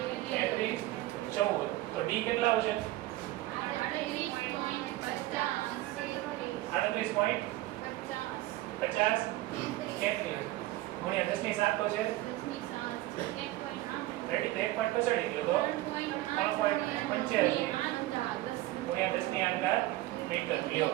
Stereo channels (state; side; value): quieter; left; 17.0 dB